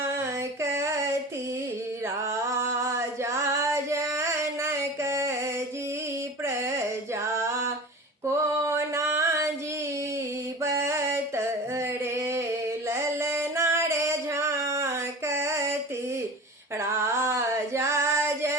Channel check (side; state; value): both; normal; correlation 0.35